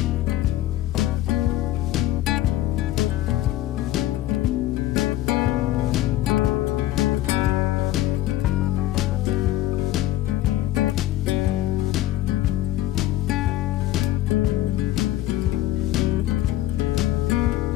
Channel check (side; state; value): right; quieter; 14.6 dB